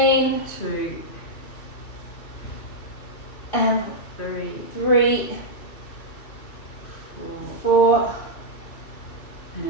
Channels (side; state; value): right; late; 2.6 ms